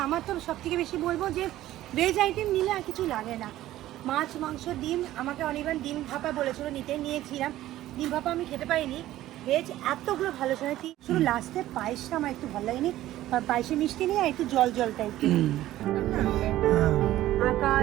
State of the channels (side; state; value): left; quieter; 14.5 dB